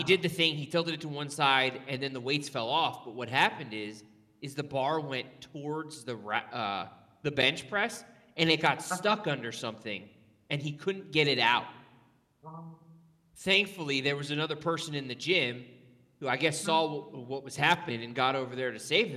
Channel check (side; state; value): both; identical; correlation 1.00